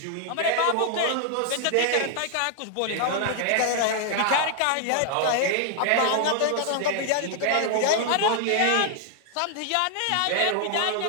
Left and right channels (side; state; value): both; different; correlation 0.00